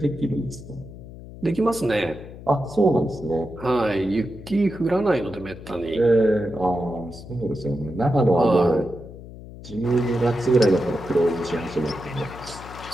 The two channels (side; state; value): left; noise; hum, 15 dB below the sound